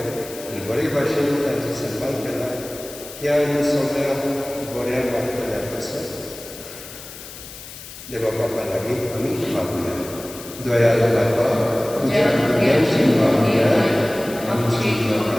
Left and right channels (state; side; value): noise; left; hiss, 14 dB below the sound